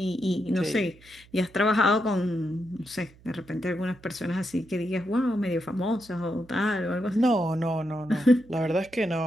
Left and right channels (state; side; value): noise; right; hum, 25 dB below the sound